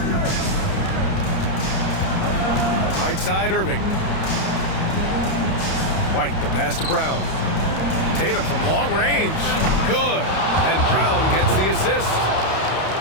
Right side, Irving. White, the pass to Brown. Tatum from long range. Good. And Brown gets the assist.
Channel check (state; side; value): late; right; 31 ms